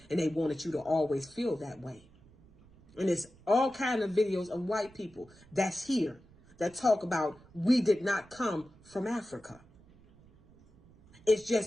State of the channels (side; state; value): right; noise; rumble, 26 dB below the sound